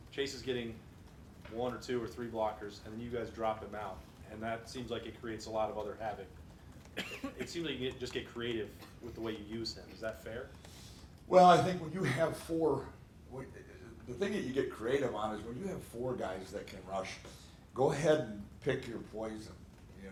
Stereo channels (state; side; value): identical; both; correlation 1.00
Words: Chase is getting 1 or 2 or 3 blockers, and then you guys drop him out. And that seems like it creates a lot of other havoc. It seems like you just get creative with the way you use him. Is that fair? Well, I think when you have 4, the thing that you get creative on is when you have 4 guys that can rush, go ahead and pick your poison. You